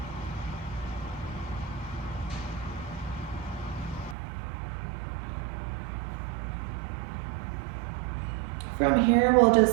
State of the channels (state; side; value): drops out; left; at 4.2 s